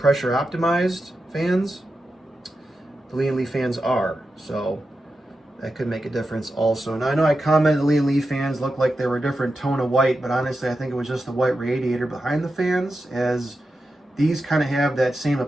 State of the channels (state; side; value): normal; both; correlation 0.90